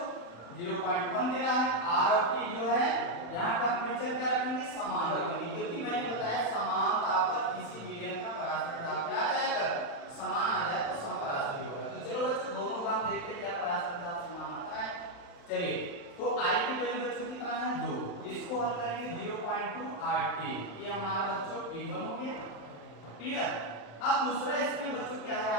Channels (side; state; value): right; late; 35 ms